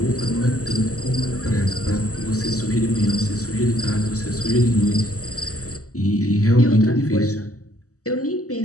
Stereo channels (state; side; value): late; right; 0.66 ms